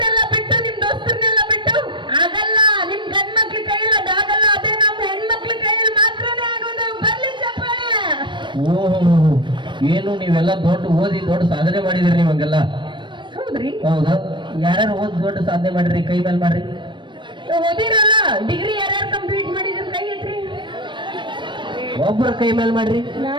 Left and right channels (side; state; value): left; late; 0.23 ms